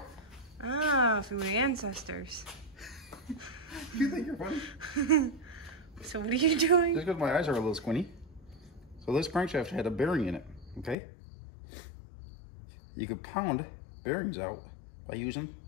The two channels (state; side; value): drops out; right; at 11.0 s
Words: Ah, from my ancestors. You think you're funny? So what are you doing? Just because my eyes are a little squinty. So this crankshaft had a bearing in it, okay? You could pound bearings out by using